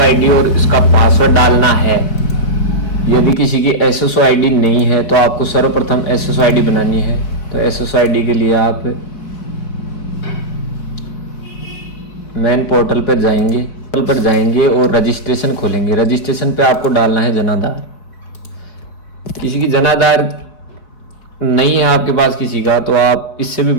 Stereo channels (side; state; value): right; late; 4.5 ms